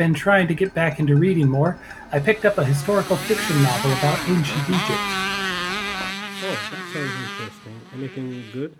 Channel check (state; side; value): identical; both; correlation 1.00